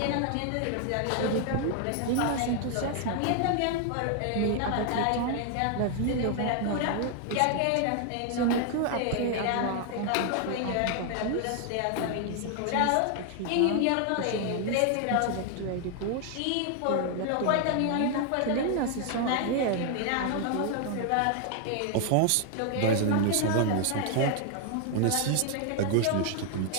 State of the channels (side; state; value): both; different; correlation 0.00